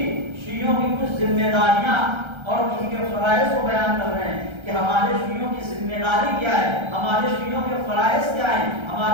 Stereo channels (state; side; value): late; left; 1.3 ms